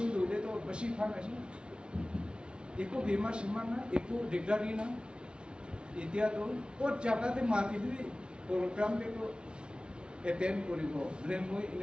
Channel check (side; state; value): left; late; 0.056 ms